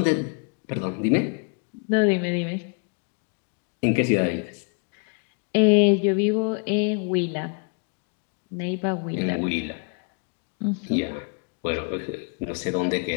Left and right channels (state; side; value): quieter; right; 36.8 dB